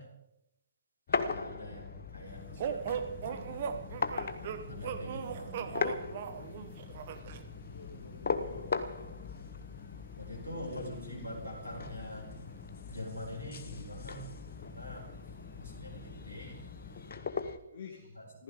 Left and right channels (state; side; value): inverted; both; correlation -0.58